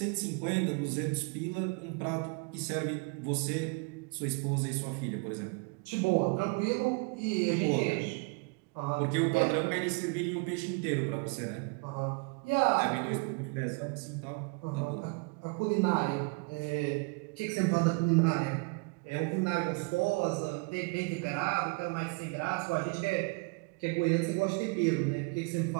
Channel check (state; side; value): quieter; left; 31.0 dB